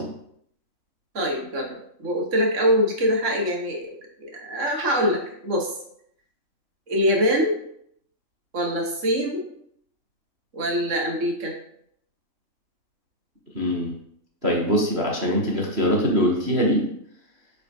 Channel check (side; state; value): left; late; 3.6 ms